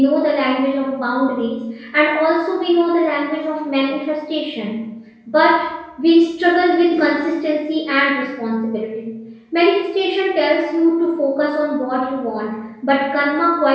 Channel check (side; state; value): both; identical; correlation 1.00